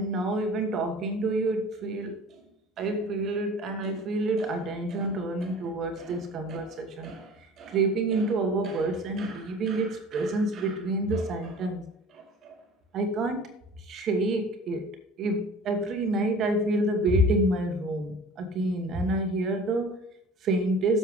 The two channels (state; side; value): normal; both; correlation 0.43